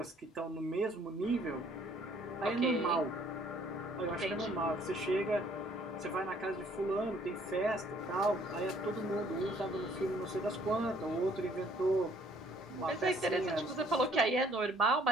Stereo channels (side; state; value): both; normal; correlation 0.61